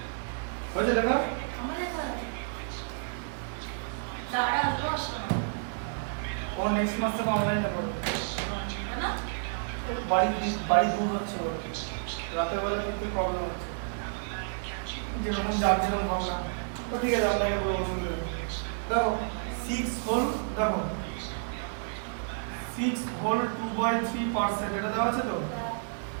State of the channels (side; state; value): left; silent; digital silence